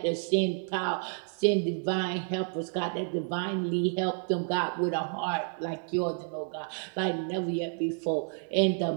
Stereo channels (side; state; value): left; silent; 57 dB below the other